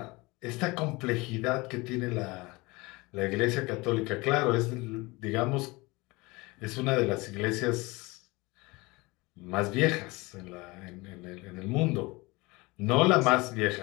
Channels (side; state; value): right; quieter; 23.7 dB